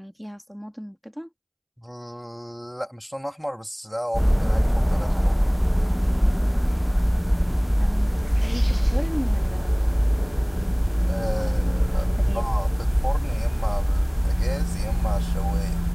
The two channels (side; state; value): both; identical; correlation 1.00